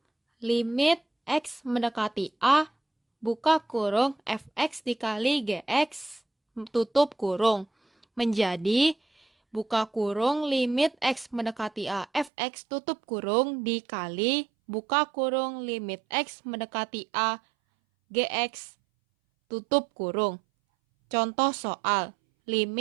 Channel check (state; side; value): drops out; left; at 12.3 s